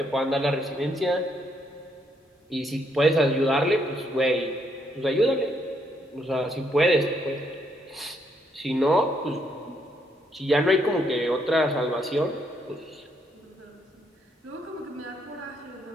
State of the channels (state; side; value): normal; both; correlation 0.74